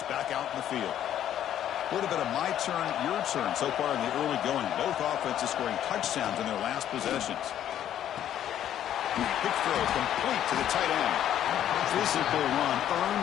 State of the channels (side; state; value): right; quieter; 10.9 dB